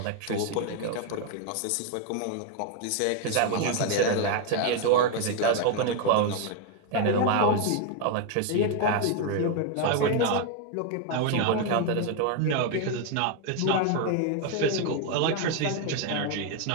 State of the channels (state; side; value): different; both; correlation 0.01